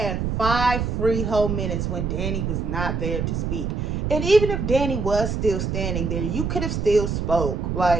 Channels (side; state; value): right; noise; rumble, 1 dB below the sound